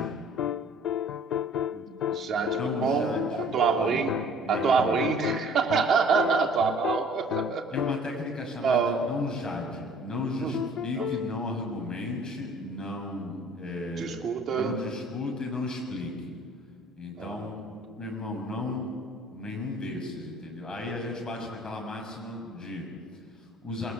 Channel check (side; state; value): both; normal; correlation 0.52